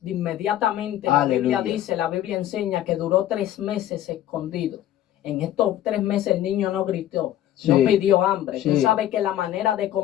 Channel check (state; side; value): quieter; right; 12.6 dB